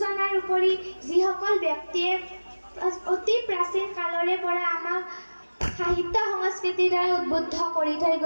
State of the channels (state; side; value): inverted; both; correlation -1.00